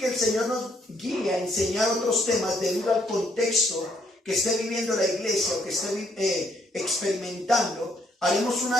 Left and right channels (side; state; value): both; normal; correlation 0.70